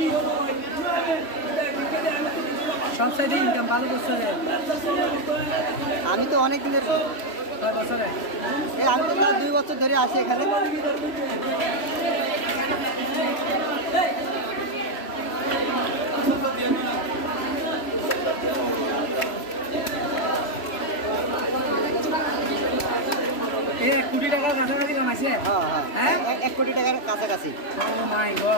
আমি তো অনেক দিনের, আমি তো 2 বছর ধরে আসি এখানে। $1 কোটি কাছাকাছি কামাইছে। হ্যাঁ, 1 কোটি টাকার কাছাকাছি। ও মাই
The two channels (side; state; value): right; late; 3.0 ms